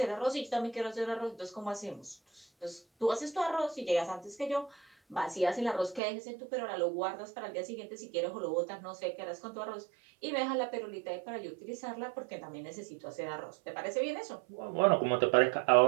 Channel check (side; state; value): left; drops out; at 6.0 s